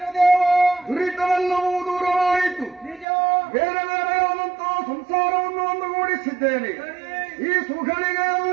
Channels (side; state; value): left; drops out; at 3.1 s